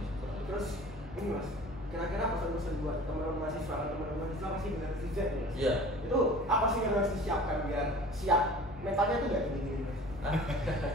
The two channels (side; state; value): both; normal; correlation 0.44